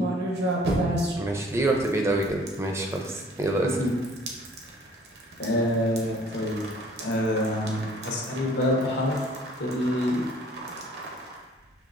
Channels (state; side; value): normal; both; correlation 0.55